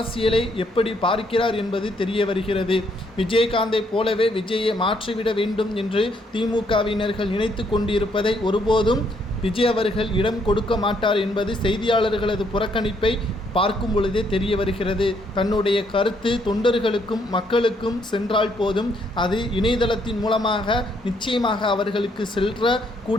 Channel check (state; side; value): normal; both; correlation 0.71